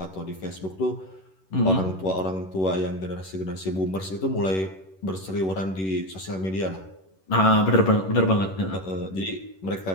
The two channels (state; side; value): late; right; 11 ms